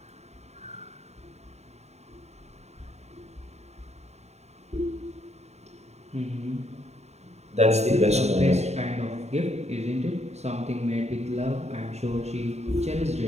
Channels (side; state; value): left; late; 0.32 ms